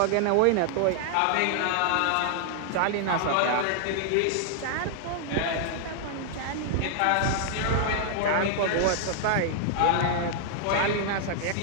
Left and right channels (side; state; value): both; different; correlation 0.00